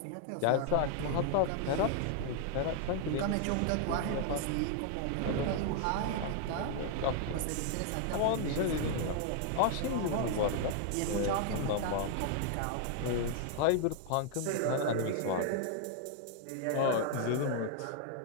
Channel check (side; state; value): both; different; correlation 0.00